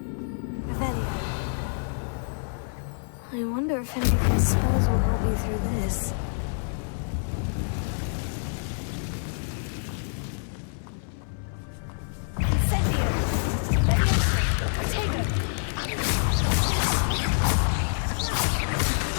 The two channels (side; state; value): right; silent; 56 dB below the other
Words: Revelio. I wonder if any of these spells will help me through this. Incendio! Levioso! Protego!